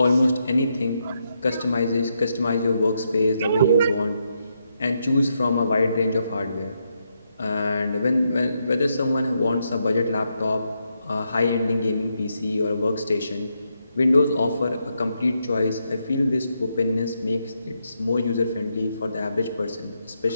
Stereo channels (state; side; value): inverted; both; correlation -0.81